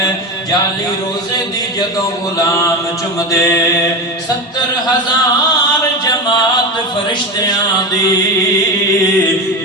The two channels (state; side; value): normal; both; correlation 0.21